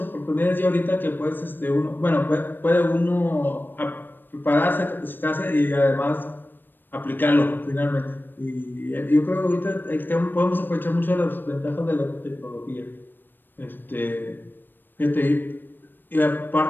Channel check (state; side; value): late; right; 0.094 ms